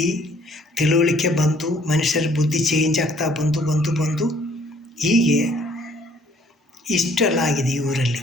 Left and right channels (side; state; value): both; normal; correlation 0.61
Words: ತಿಳುವಳಿಕೆ ಬಂದು ಮನುಷ್ಯರ ಬುದ್ಧಿ ಚೇಂಜ್ ಆಗ್ತಾ ಬಂದು ಹೀಗೆ ಇಷ್ಟೆಲ್ಲ ಆಗಿದೆ. ಈ ಊರಲ್ಲಿ